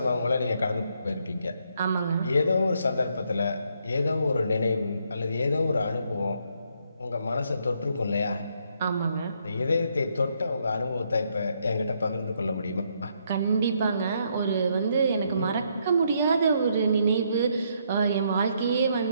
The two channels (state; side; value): inverted; both; correlation -0.73